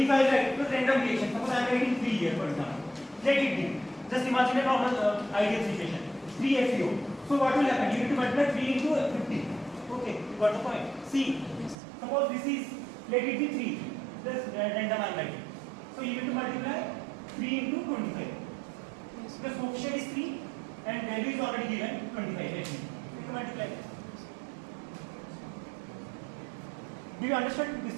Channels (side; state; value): left; drops out; at 11.8 s